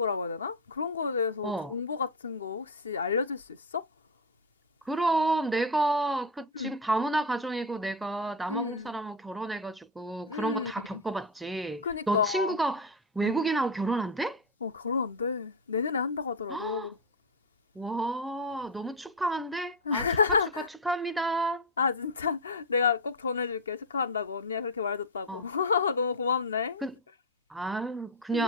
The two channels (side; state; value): both; normal; correlation 0.08